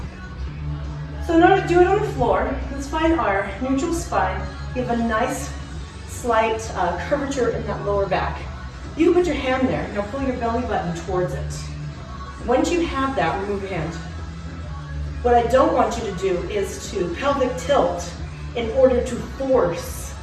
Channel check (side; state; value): both; identical; correlation 1.00